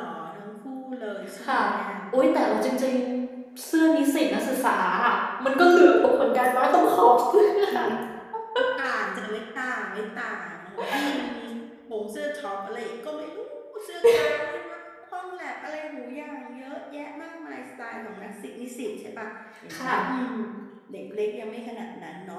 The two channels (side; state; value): both; identical; correlation 1.00